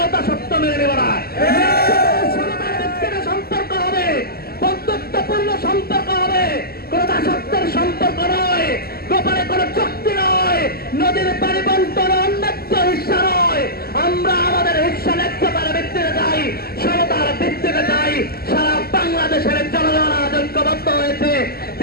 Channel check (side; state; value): right; late; 0.45 ms